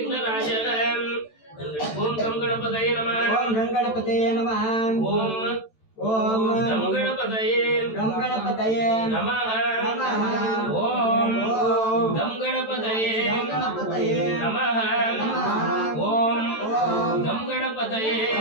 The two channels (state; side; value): late; right; 13 ms